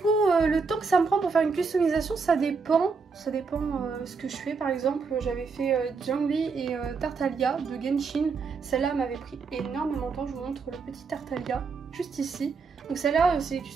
le temps que ça me prend pour faire une customisation, ça dépend. Ça dépend ce que je fais. Par exemple, j'avais fait Zhongli et Tartaglia de Genshin. Celle-là m'avait pris énormément de temps. Je vous montre le petit Tartaglia juste ici. Donc celle-là, c'est les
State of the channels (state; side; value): quieter; left; 4.9 dB